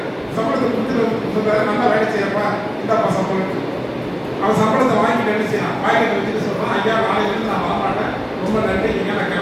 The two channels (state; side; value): identical; both; correlation 1.00